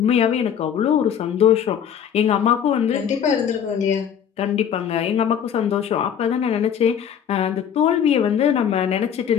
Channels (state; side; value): quieter; right; 8.5 dB